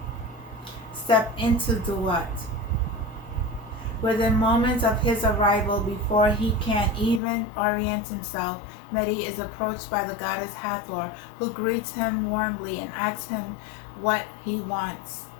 step into DUAT. Within moments of his arrival, before he can even orient himself, MERYRE is approached by the goddess Hathor, who greets him warmly and asks him what he wants.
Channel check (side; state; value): right; drops out; at 7.2 s